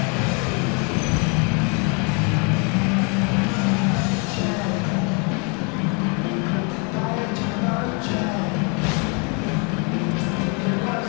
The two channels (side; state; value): right; quieter; 34.4 dB